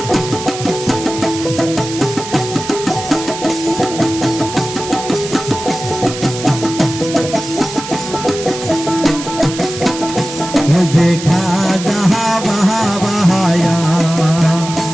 দেখা যাহা বাহাবায়া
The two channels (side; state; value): right; noise; hiss, 10 dB below the sound